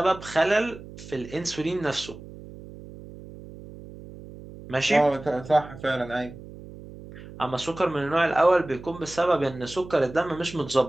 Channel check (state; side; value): noise; right; hum, 16 dB below the sound